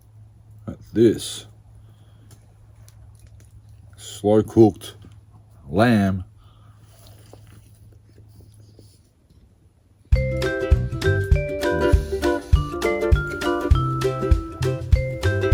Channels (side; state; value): both; identical; correlation 1.00